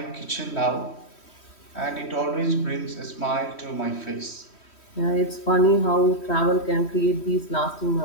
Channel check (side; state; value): right; late; 3.1 ms